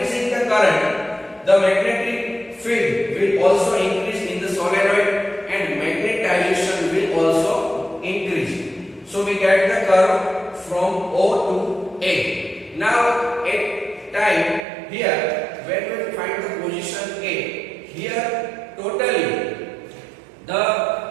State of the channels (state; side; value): drops out; left; at 14.6 s